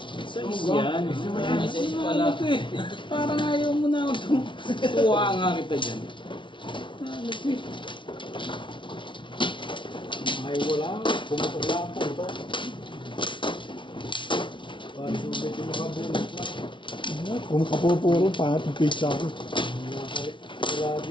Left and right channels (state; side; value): late; right; 0.24 ms